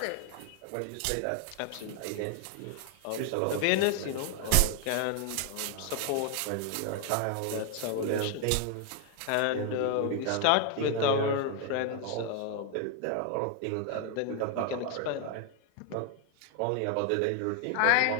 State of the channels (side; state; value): both; different; correlation 0.01